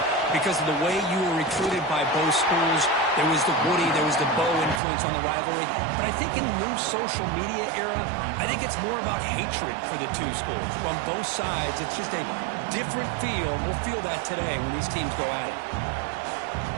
because of the way you were recruited by both schools. There was the Woody, there was the Bo influence on the rivalry. But I think in the new social media era, I think it's more about hatred for the two schools. From both sides, it's just a different feel. We'll feel that today when these teams go at it.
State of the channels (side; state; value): left; drops out; at 4.8 s